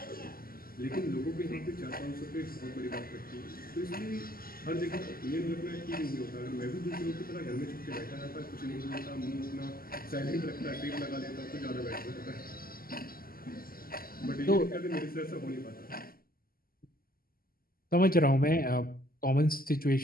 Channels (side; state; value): right; late; 0.42 ms